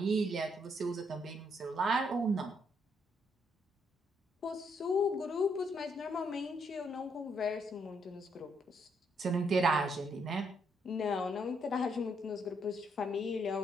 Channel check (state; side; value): normal; both; correlation 0.74